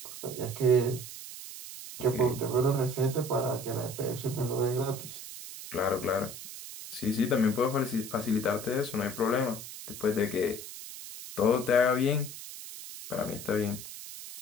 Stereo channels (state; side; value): noise; right; hiss, 11 dB below the sound